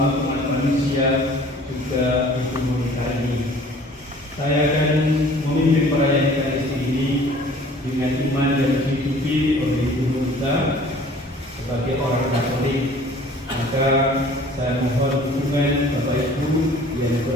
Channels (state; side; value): normal; both; correlation 0.50